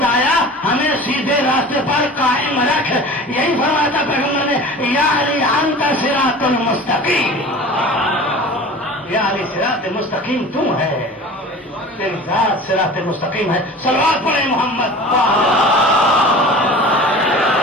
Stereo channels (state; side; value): normal; both; correlation 0.39